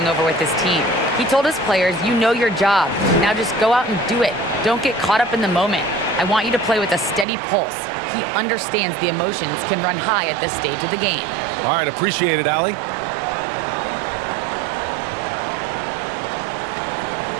over with his team. He told his players, you know your job. Now just go out and do it. Don't get caught up in the moment. I want you to play with a steady pulse. He understands the emotions can run high at this stage of the game. All right, appreciate it, Allie.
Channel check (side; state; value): left; drops out; at 7.2 s